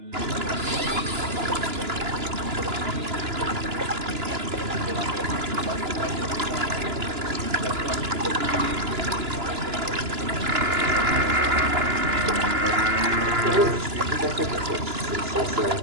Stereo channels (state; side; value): late; left; 2.9 ms